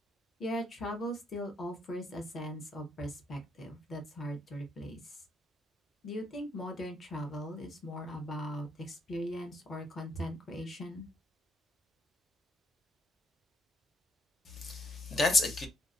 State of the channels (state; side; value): normal; both; correlation 0.73